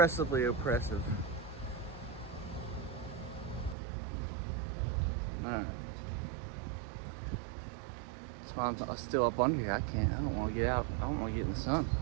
oppressive. Alright. That's why I'm still up under here. I don't want to get out. I don't want to get in the sun.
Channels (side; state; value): left; drops out; at 3.8 s